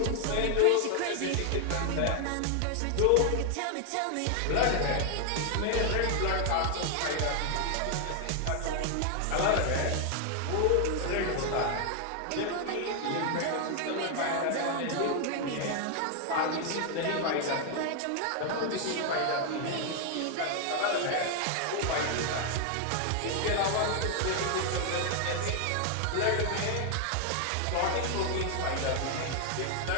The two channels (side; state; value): both; different; correlation 0.00